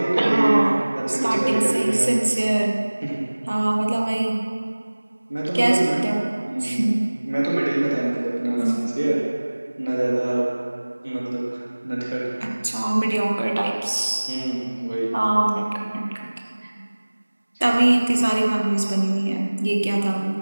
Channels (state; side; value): inverted; both; correlation -1.00